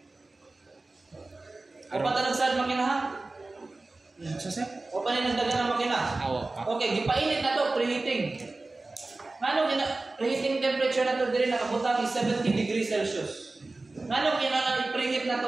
O pa talagsad makina ha? Sa sir? O pa nagdagan ang makina? Awo. Okay, gipainit na to, preheating. Ngano preheating temperature na to diri nakabutang is 70 degrees Celsius. Ngano kinahanglan i-preheat na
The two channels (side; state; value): left; quieter; 3.2 dB